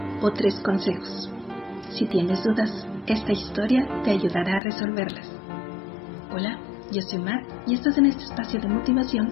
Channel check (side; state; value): right; drops out; at 4.6 s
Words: o 3 consejos? Si tienes dudas, esta historia te ayudará a resolverlas. Hola, yo soy Mar y estás en este espacio de